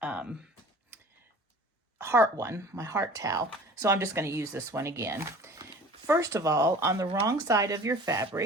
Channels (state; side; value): normal; both; correlation 0.44